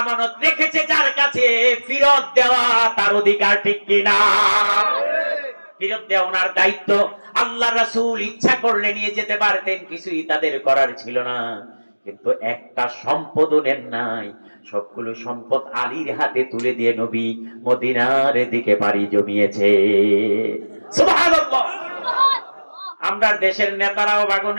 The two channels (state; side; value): inverted; both; correlation -1.00